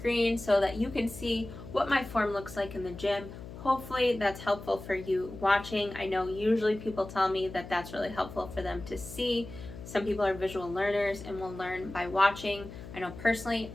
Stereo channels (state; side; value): noise; left; hum, 13 dB below the sound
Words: so that you can see what my form looks like in the gym. Hopefully that's helpful for you watching. I know usually people tell me that that's really helpful for them to see. Some people are visual learners and will learn by watching. I know personally